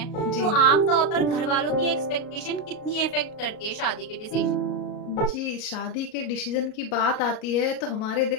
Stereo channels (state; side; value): late; right; 37 ms